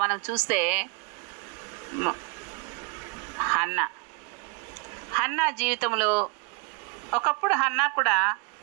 మనం చూస్తే హన్నా జీవితంలో ఒకప్పుడు హన్నా కూడా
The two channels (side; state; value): left; quieter; 32.7 dB